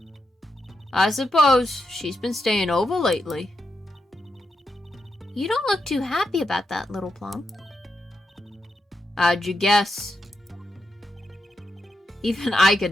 I suppose. She's been staying over lately. You don't look too happy about that, little plum. How'd you guess? Even I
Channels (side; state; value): both; normal; correlation 0.84